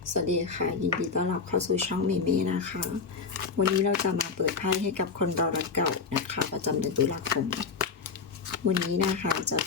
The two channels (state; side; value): quieter; right; 5.1 dB